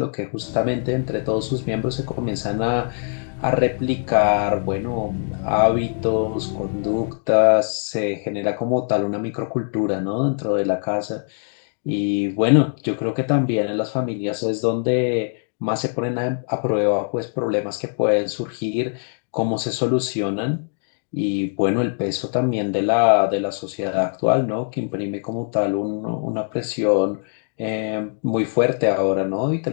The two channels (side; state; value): right; silent; 64 dB below the other